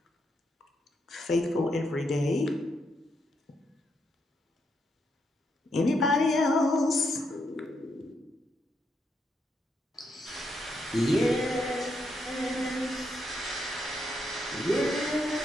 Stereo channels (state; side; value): normal; both; correlation 0.79